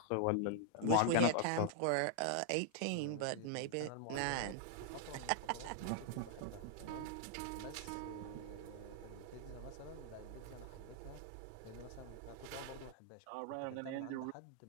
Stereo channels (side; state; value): both; different; correlation 0.00